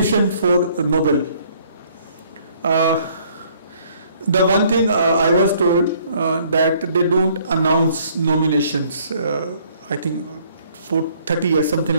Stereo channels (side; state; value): both; inverted; correlation -0.62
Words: for Nobel. The one thing I was told that they don't announce nominations. I think for 30 years, something